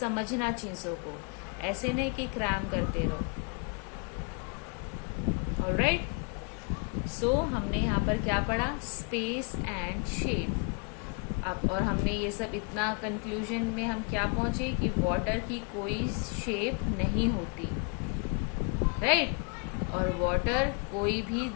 चीजों को, ऐसे नहीं कि क्रैम करते रहो. ऑलराइट. सो हमने यहाँ पर क्या पढ़ा, स्पेस एंड शेप. अब और हमने ये सब इतना कंक्लूजन में हम क्या पहुंचे कि वाटर की कोई शेप नहीं होती, राइट. और वाटर कोई भी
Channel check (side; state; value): right; quieter; 36.5 dB